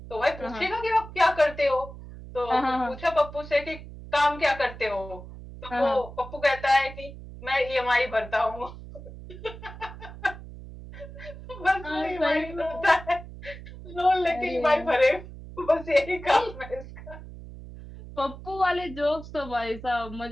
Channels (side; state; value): right; noise; hum, 14 dB below the sound